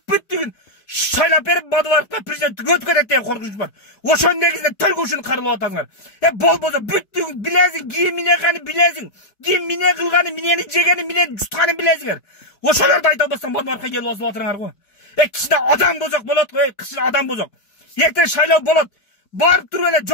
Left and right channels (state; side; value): late; right; 4.5 ms